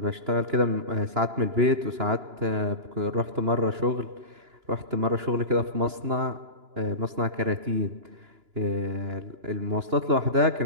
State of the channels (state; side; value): late; left; 2.9 ms